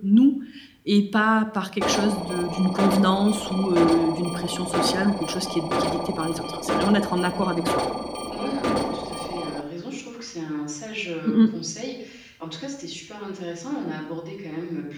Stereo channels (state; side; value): identical; both; correlation 1.00